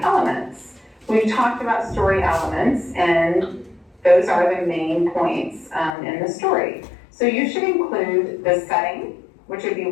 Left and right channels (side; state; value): right; drops out; at 6.0 s